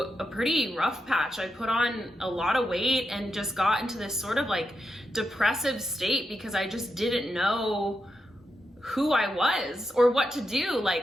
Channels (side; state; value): both; normal; correlation 0.86